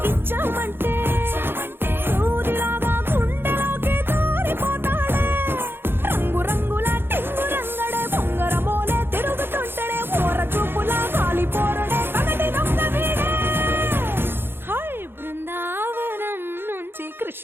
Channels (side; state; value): left; late; 0.10 ms